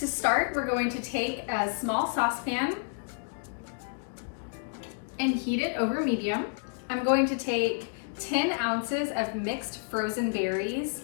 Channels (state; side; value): silent; right; digital silence